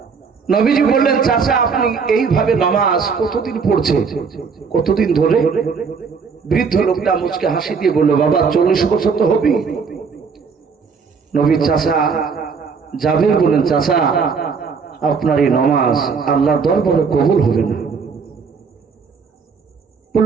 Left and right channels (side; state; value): left; quieter; 5.6 dB